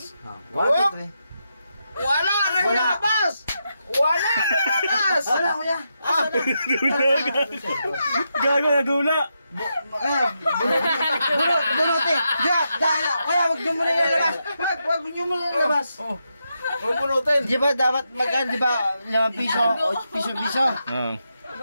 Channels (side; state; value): both; inverted; correlation -0.85